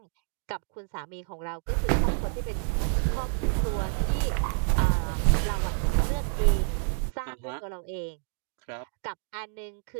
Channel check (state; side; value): silent; left; digital silence